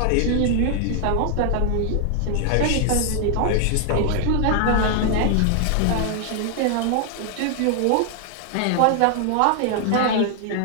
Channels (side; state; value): both; different; correlation 0.00